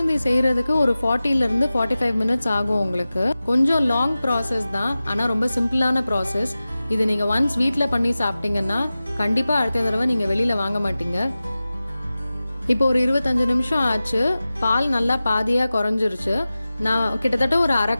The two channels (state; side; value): inverted; both; correlation -0.95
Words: செய்கிறதுக்கு ஒரு 40 to 45 minutes ஆகும். உங்களுக்கு கொஞ்சம் லாங் ப்ராசஸ் தான், ஆனால் ரொம்ப சிம்பிளான ப்ராசஸ். இது நீங்கள் ஒன்ஸ் வீட்டில் பண்ணி சாப்பிட்டீங்கன்னா கண்டிப்பாக அடுத்த தடவை நீங்கள் வெளியில் வாங்க மாட்டீங்க. இப்போ ஒரு 25 நிமிஷம் ஆச்சு. பால் நல்லா பாதியாக குறைஞ்சிருச்சு. நான் கிட்டத்தட்ட ஒரு 1/2